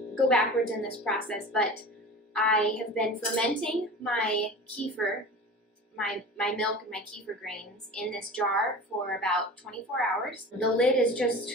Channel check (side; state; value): both; normal; correlation 0.36